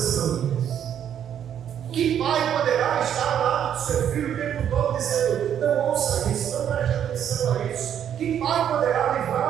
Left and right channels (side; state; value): left; quieter; 9.4 dB